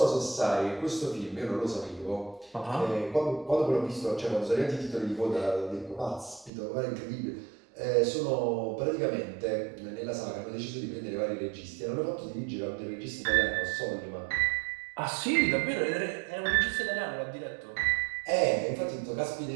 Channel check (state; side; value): drops out; left; at 6.5 s